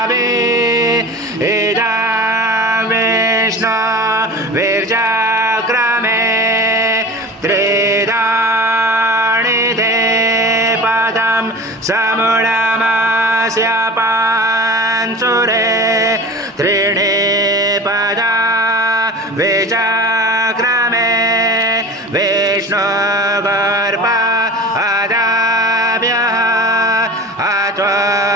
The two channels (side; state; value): both; normal; correlation 0.35